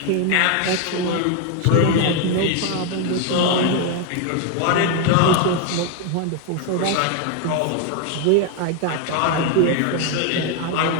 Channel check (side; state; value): both; different; correlation 0.01